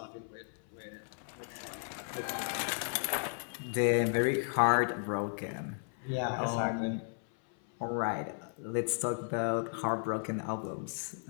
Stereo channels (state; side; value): silent; right; 55 dB below the other